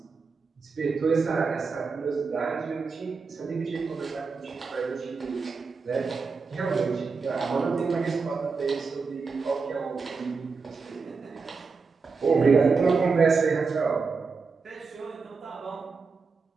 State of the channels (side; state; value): left; quieter; 4.8 dB